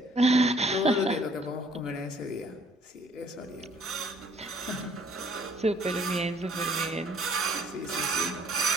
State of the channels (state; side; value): normal; both; correlation 0.60